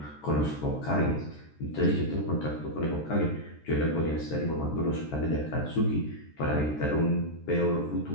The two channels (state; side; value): late; right; 13 ms